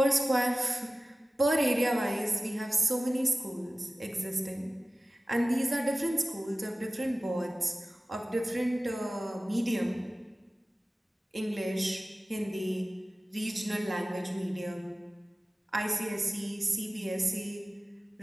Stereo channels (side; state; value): both; normal; correlation 0.96